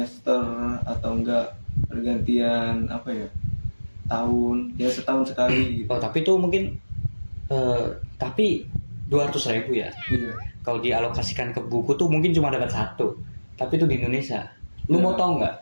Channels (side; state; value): both; inverted; correlation -1.00